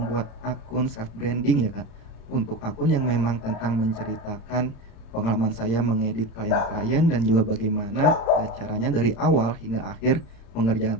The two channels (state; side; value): late; right; 35 ms